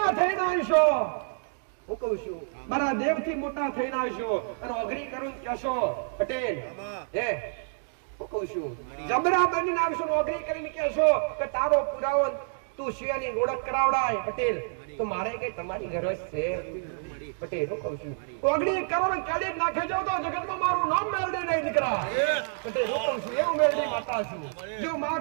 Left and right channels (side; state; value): left; silent; digital silence